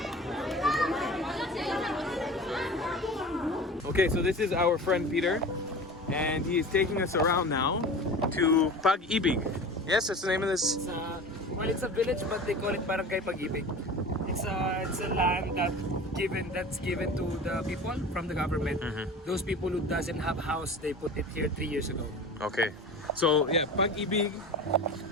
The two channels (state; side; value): normal; both; correlation 0.35